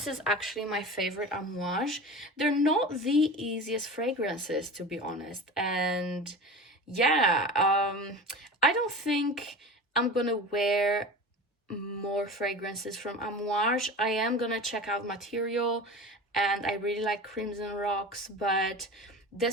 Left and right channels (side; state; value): both; normal; correlation 0.33